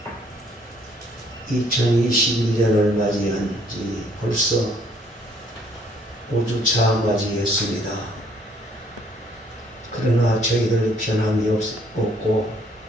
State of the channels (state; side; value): normal; both; correlation 0.63